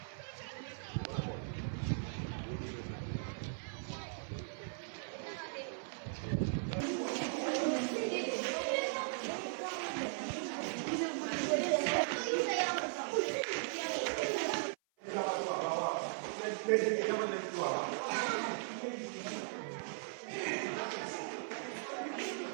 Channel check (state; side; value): silent; left; 52 dB below the other